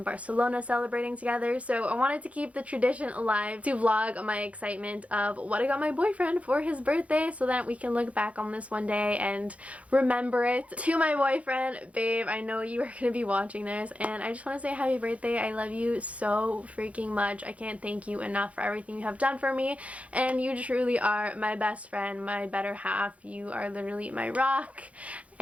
Barcelona celebrating together, so I wanted to keep the tradition alive to vlog my excitement of what I got my boyfriend for his birthday so that we can look back on this one day and remember it. To my boyfriend, babe, I know you are going to be watching this, and I just want to say happy birthday. I love you so freaking much. I can't thank you enough for everything you have done for me, and you truly are my best friend, my better half. You are literally my rock,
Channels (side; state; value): left; late; 0.065 ms